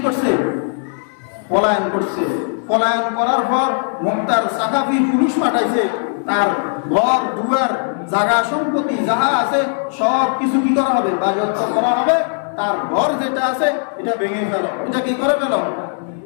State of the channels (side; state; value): right; silent; 67 dB below the other